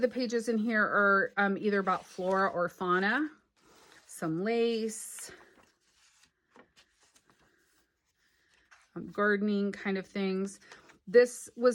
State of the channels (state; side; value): identical; both; correlation 1.00